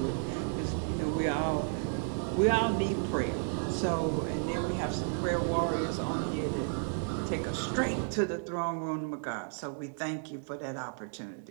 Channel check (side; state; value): left; silent; 56 dB below the other